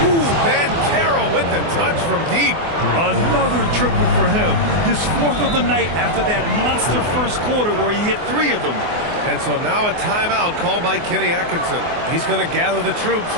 Ooh, Banchero with the touch from deep. Another triple for him. His 4th of the night after that monster first quarter where he hit 3 of them. And so now a timeout called by Kenny Atkinson. He's going to gather the troops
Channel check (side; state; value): left; late; 24 ms